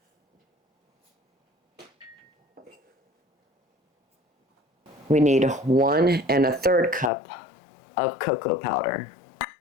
We need 1 1/3 cup of cocoa powder.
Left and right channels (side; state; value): right; drops out; at 7.1 s